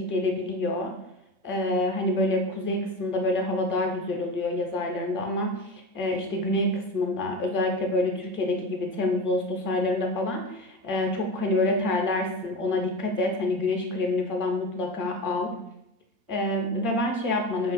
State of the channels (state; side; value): late; left; 8.7 ms